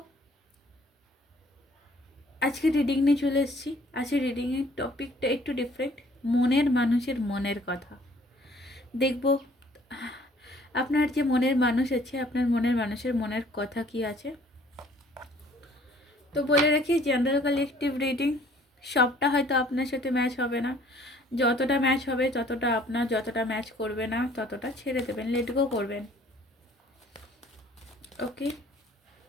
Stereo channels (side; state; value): both; normal; correlation 0.57